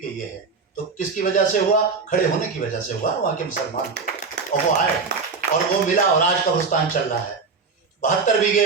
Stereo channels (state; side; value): quieter; left; 4.8 dB